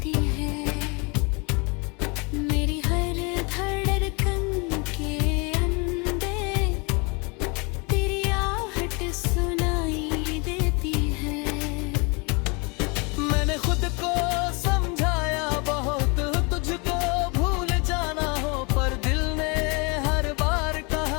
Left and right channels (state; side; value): quieter; right; 30.7 dB